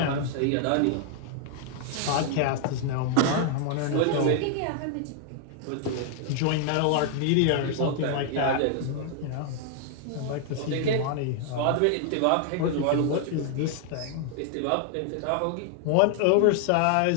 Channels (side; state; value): both; different; correlation 0.00